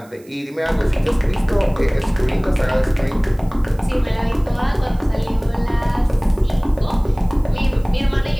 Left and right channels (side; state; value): right; noise; hiss, 28 dB below the sound